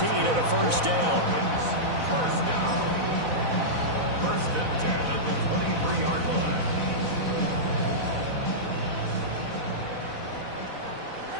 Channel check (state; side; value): late; left; 4.0 ms